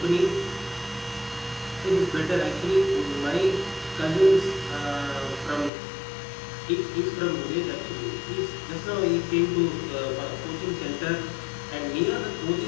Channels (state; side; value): drops out; right; at 5.7 s